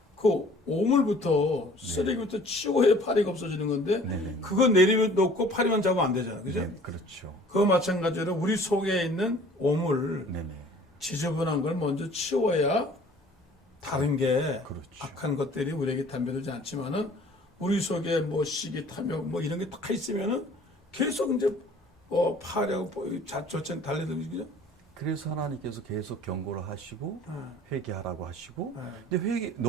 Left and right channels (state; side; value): normal; both; correlation 0.51